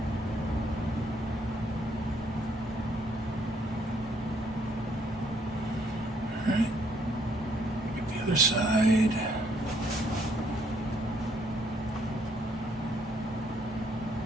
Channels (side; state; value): both; normal; correlation 0.69